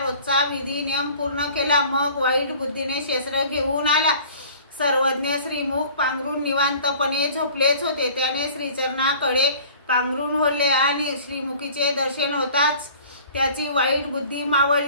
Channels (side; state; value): both; inverted; correlation -0.47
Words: विधी नियम पूर्ण केला, मग वाईट बुद्धीने शस्त्र घेऊन आला। सर्वज्ञ श्रीमुख पांघरून निवांतपणे झोपलेच होते। त्याने श्रीचरणाकडे पांघरून ओढले आणि श्रीमुखीचे दर्शन होताच त्याची वाईट बुद्धी